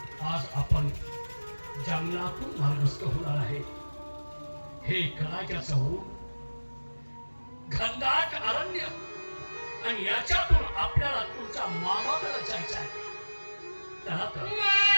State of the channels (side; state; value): both; inverted; correlation -1.00